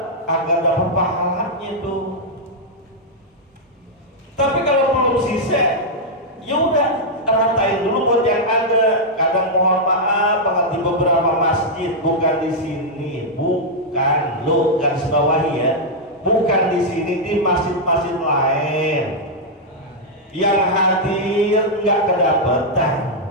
agar dapat pahalanya tuh. Tapi kalau belum sisa, ya udah ratain dulu buat yang ada. Kadang mohon maaf banget di beberapa masjid, bukan di sini, bukan lo garis bawahi ya, bukan di sini, di masjid-masjid lain yang hadir nggak kedapetan.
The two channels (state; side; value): normal; both; correlation -0.05